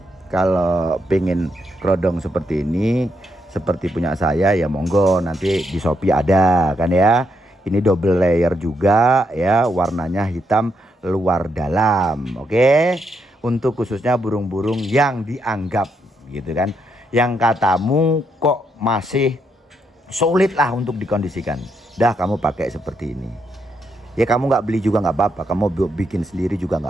kalau pengen kerodong seperti ini, seperti punya saya ya monggo, nanti di Shopee ada kan ya. Ini double layer juga ya, warnanya hitam luar dalam. Oke, untuk khususnya burung-burung yang dianggap gitu kan, yang katamu kok masih sulit lah untuk dikondisikan, dah kamu pakai seperti ini ya. Kamu nggak beli juga nggak apa-apa, kamu bikin sendiri juga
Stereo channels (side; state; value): both; normal; correlation 0.79